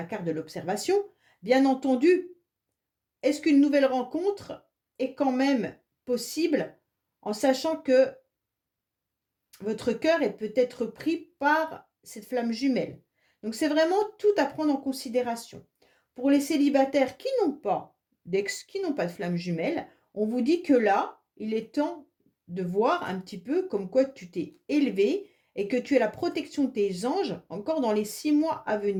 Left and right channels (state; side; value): identical; both; correlation 1.00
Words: carte de l'observation, bien entendu, est-ce qu'une nouvelle rencontre est quand même possible en sachant que votre cœur est peut-être pris par cette flamme jumelle. Donc c'est vraiment tout à prendre en considération. Pour les célibataires qui n'ont pas d'ex, qui n'ont pas de flamme jumelle, on vous dit que là, il est temps de voir un petit peu comme quoi tu t'es élevé et que tu as la protection de tes anges encore dans les 6 mois à